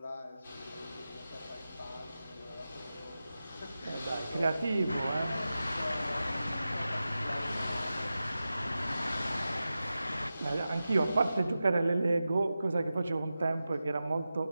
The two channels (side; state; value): both; inverted; correlation -0.93